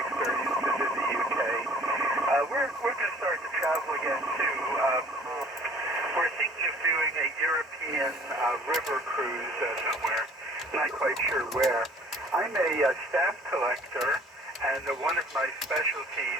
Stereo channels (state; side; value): normal; both; correlation 0.52